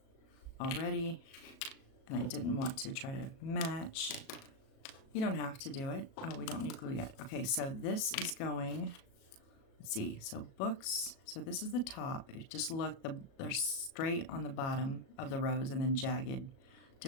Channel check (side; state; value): right; late; 37 ms